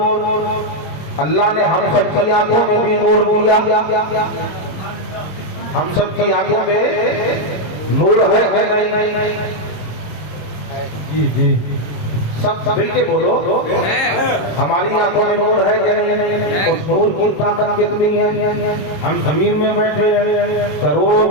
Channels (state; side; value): late; right; 26 ms